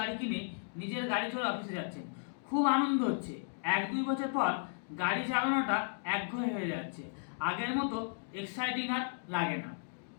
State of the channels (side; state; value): right; silent; digital silence